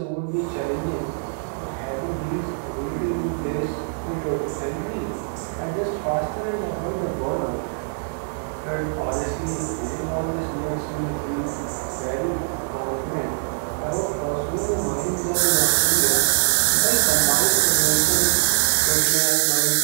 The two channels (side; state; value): left; silent; digital silence